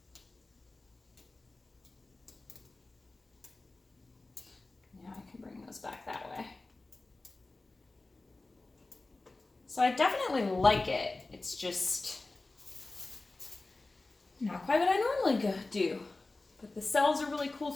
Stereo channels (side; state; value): right; quieter; 3.2 dB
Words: Now I can bring those back that way. So I definitely like it. It's just Not quite what I normally do. But the cells are really cool